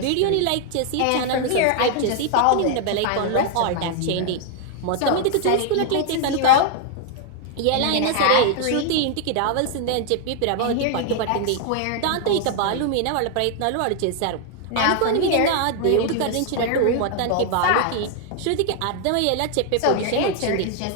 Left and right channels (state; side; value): different; both; correlation 0.00